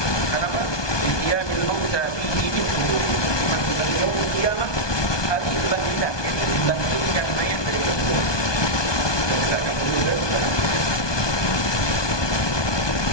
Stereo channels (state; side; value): late; right; 1.2 ms